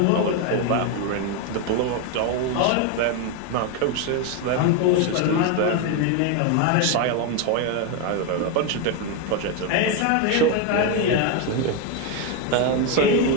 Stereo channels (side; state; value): both; different; correlation 0.02